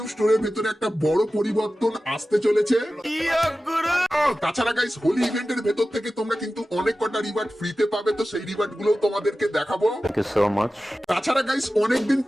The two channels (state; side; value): normal; both; correlation 0.95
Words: স্টোরের ভেতরে একটা বড় পরিবর্তন আসতে চলেছে। তাছাড়া গাইস হোলি ইভেন্টের ভেতর থেকে তোমরা কিন্তু অনেক কটা রিওয়ার্ড ফ্রিতে পাবে, তো সেই রিওয়ার্ড গুলো তোমাদেরকে দেখাবো। তাছাড়া গাইস অনেকদিন